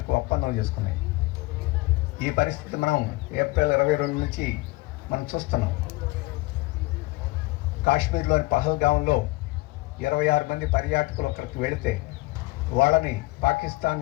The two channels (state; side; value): quieter; right; 21.9 dB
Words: ఒప్పందం చేసుకున్నాయి. ఈ పరిస్థితి మనం ఏప్రిల్ 22 నుంచి మనం చూస్తున్నాం. కాశ్మీర్లోని పహల్గాంలో 26 మంది పర్యాటకులు ఒకరికి వెళితే వాళ్ళని పాకిస్తాన్